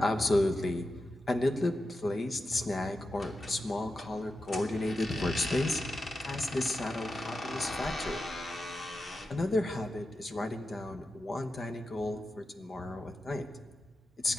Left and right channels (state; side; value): normal; both; correlation 0.90